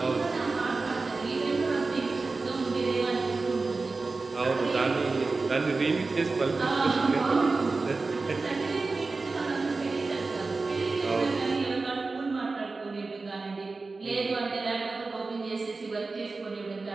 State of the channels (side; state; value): left; quieter; 3.8 dB